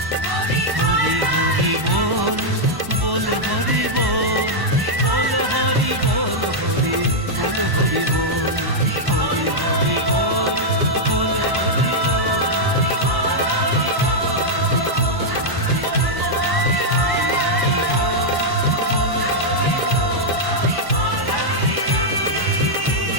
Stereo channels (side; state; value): left; late; 1.1 ms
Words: হরি হরি বল বল হরি বল, বল হরি বল হরি বল হরি বল। হরি হরি বল বল হরি বল।